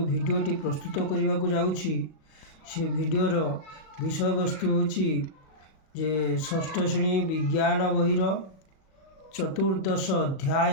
भिडियोटी प्रस्तुत करने को जाऊँगी से भिडियोर विषय वस्तु होची जे षष्ठ श्रेणी विज्ञान बहिर चतुर्दश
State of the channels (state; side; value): late; right; 37 ms